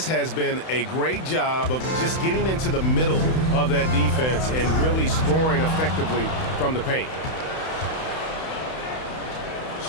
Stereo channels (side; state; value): right; late; 31 ms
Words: has been a great job of just getting into the middle of that defense and really scoring effectively from the paint.